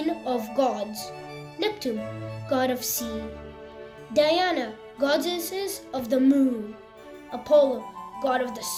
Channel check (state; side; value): identical; both; correlation 1.00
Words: of gods; Neptune, god of sea; Diana, goddesses of the moon; Apollo, god of the